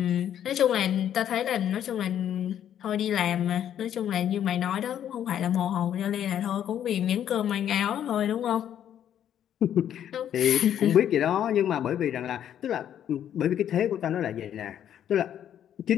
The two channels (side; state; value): right; quieter; 10.1 dB